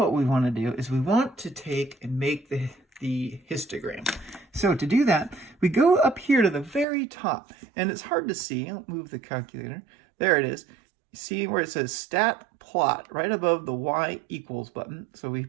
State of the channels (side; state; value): left; drops out; at 6.9 s